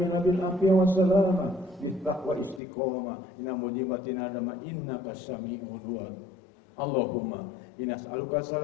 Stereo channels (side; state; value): right; drops out; at 2.6 s